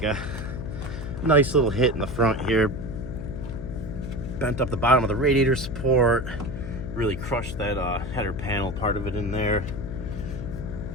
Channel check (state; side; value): noise; left; hum, 8 dB below the sound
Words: a nice little hit in the front here. Bent up the bottom of the radiator support, really crushed that header panel part of it in there.